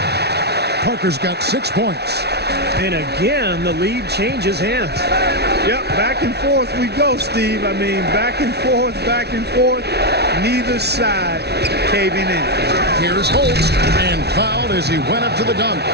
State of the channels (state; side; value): late; left; 0.49 ms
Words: Parker's got 6 points. And again, the lead changes hands. Yep, back and forth we go, Steve. I mean, back and forth, back and forth. Neither side caving in. Here's Holt, and fouled as he went up to the dunk.